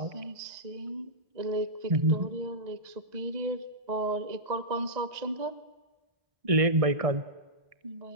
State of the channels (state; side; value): late; left; 1.9 ms